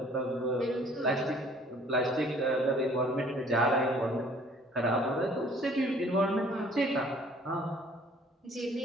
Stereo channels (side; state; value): both; normal; correlation 0.55